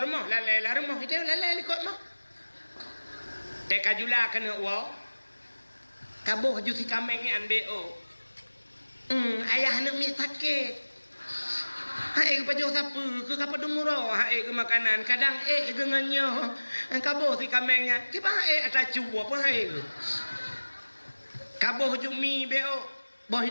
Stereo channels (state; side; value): inverted; both; correlation -1.00